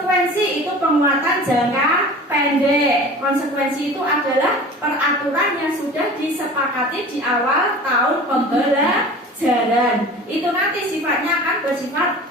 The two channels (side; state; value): both; normal; correlation 0.39